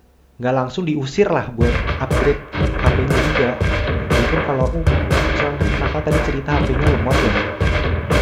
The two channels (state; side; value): identical; both; correlation 1.00